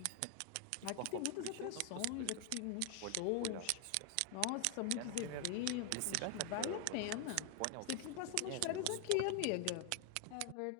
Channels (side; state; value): both; different; correlation 0.00